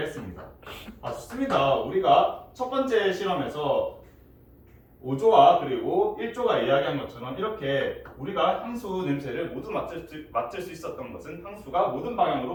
했습니다. 좋습니다. 우리가 첫 번째 실험에서 5조와 그리고 1조가 이야기한 것처럼 이렇게 우리가 향수 냄새를 모두 맡을 수 있었던 것은 향수가 모든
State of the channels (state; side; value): identical; both; correlation 1.00